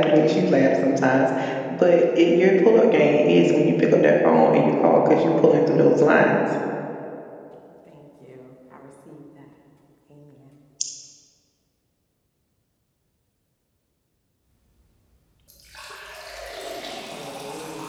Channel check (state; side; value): identical; both; correlation 1.00